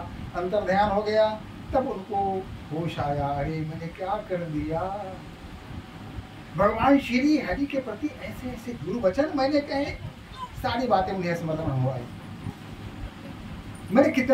अंतर ध्यान हो गया। तब उनको होश आया, अरे मैंने क्या कर दिया। भगवान श्री हरि के प्रति ऐसे ऐसे दुर्वचन मैंने कहे, सारी बातें उन्हें स्मरण हो आई। मैंने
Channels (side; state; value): both; identical; correlation 1.00